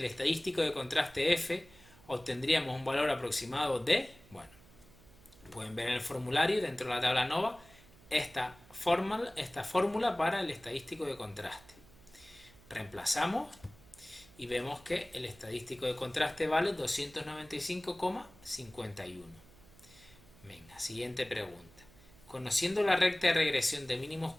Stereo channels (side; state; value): right; noise; hum, 25 dB below the sound